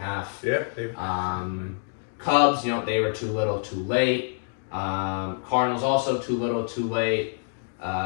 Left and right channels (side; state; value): right; silent; 61 dB below the other